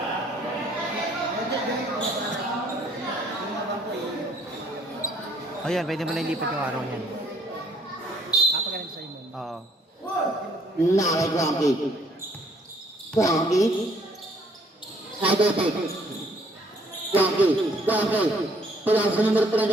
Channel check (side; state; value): both; normal; correlation 0.63